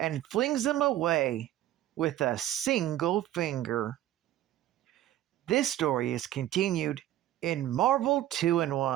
flings him away with a single finger. This story is continued in Marvel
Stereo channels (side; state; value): left; quieter; 13.3 dB